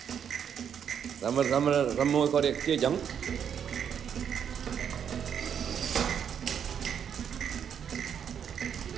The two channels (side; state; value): left; quieter; 8.1 dB